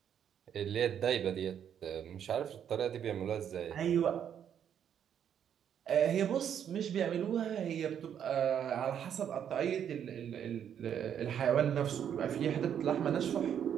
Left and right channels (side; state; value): left; quieter; 8.9 dB